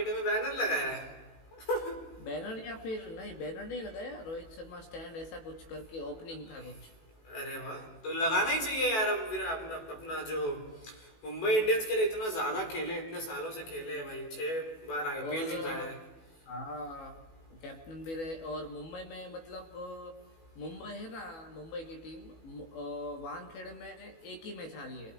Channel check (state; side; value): late; right; 18 ms